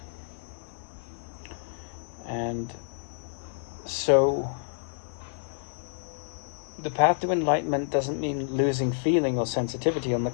And so the path to enlightenment doesn't mean losing feeling or sensitivity. On the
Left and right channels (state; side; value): silent; right; digital silence